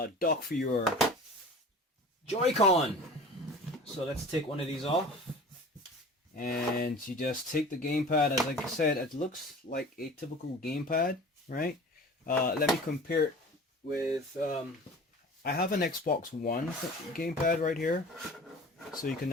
dock for your Joy-Con. So let's take one of these off. And you just take the gamepad, as like I said, it looks like a typical gamepad, right? Let me compare it with, I have an Xbox One gamepad right here. So you can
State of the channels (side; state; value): both; normal; correlation 0.40